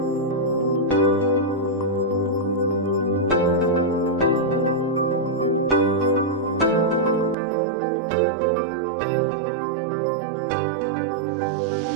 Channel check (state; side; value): drops out; left; at 7.4 s